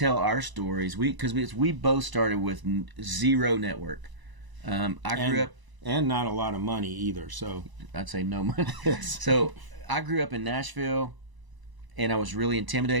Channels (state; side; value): late; left; 1.0 ms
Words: our stories because we both started with zero network. I grew up. And not a lot of money either, so. I'd say no money. So I grew up in Nashville, and I was really